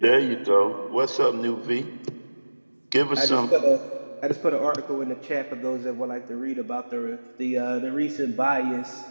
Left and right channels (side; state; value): both; inverted; correlation -1.00